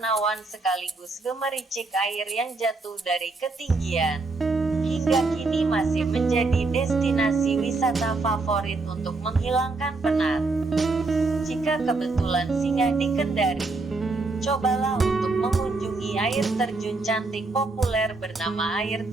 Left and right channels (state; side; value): quieter; left; 3.6 dB